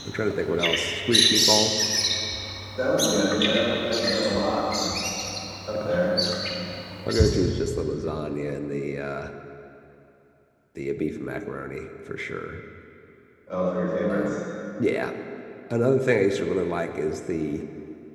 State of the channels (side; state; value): both; identical; correlation 1.00